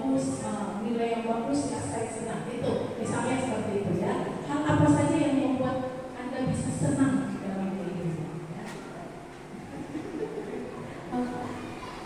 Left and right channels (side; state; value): both; identical; correlation 1.00